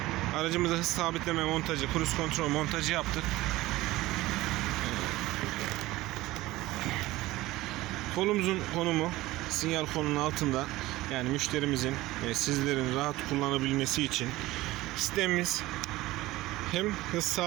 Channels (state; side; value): quieter; left; 18.0 dB